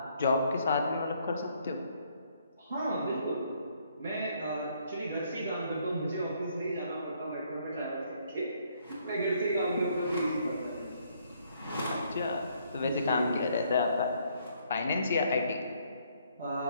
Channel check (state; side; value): inverted; both; correlation -0.68